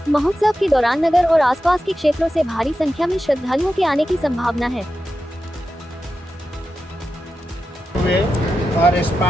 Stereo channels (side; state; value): both; normal; correlation 0.91